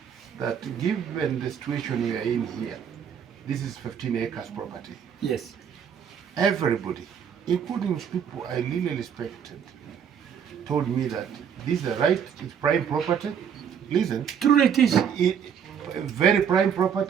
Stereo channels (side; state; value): left; quieter; 7.8 dB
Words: that given the situation we are in here, this is 15 acres property. Yes. Everybody, including people I really respected, told me that this is the right, it's prime property. Listen, True it is. very prime